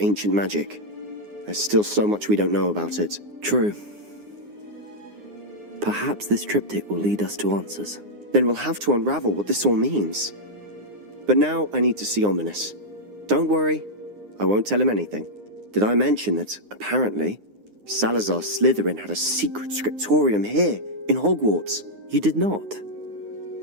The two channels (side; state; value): left; late; 9.7 ms